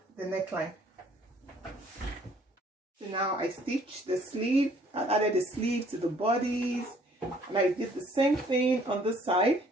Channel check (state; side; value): normal; both; correlation 0.59